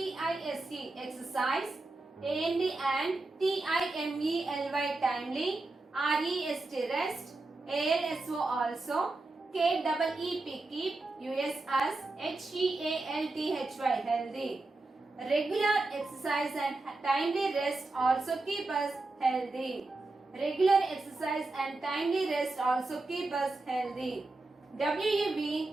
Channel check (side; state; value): left; quieter; 3.2 dB